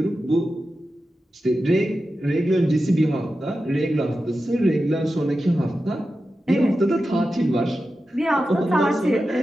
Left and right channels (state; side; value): normal; both; correlation 0.92